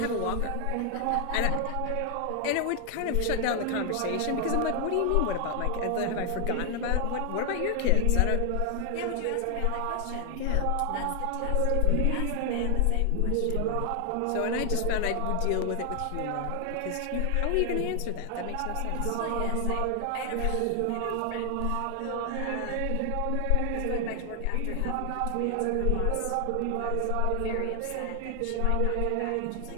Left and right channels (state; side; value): different; both; correlation 0.00